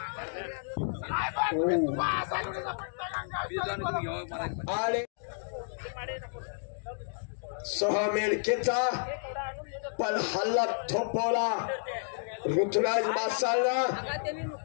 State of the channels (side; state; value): right; silent; digital silence